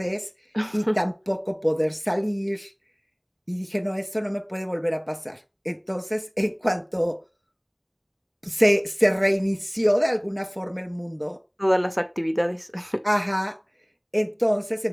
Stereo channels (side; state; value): both; identical; correlation 1.00